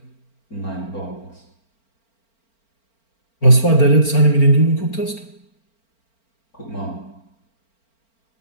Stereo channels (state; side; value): late; right; 4.4 ms